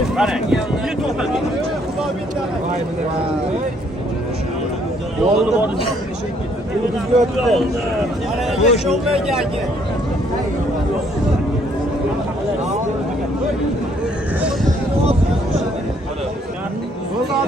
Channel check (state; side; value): normal; both; correlation 0.66